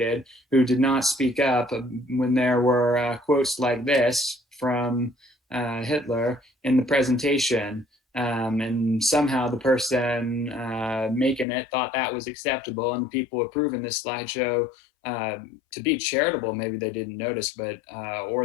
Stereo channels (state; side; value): drops out; right; at 11.5 s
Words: who did not speak up when there were quotes like this from Hitler in the presentation. And somehow the person making it thought that was acceptable, and the people approving this slideshow, to be charitable, maybe they didn't notice, but